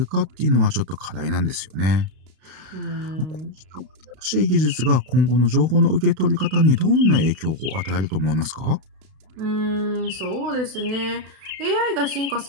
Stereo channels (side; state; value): left; late; 32 ms